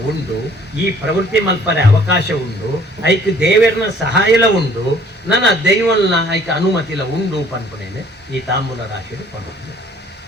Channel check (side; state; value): both; normal; correlation 0.57